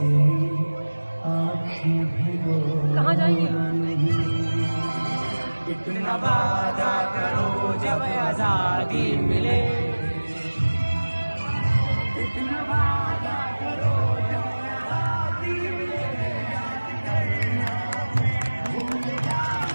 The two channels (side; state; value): both; inverted; correlation -1.00